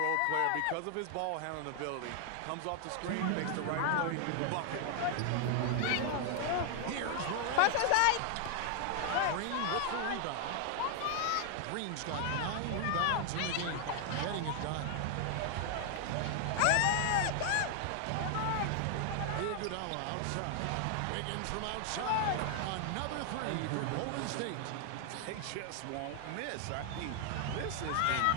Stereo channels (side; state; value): both; different; correlation 0.00